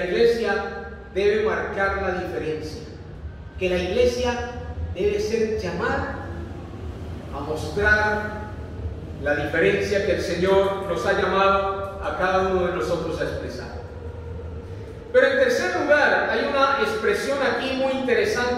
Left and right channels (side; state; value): both; identical; correlation 1.00